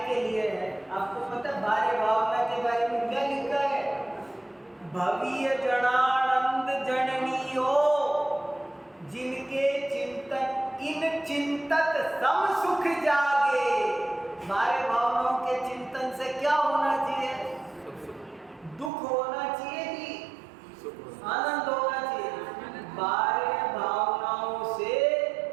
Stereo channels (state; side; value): drops out; left; at 18.9 s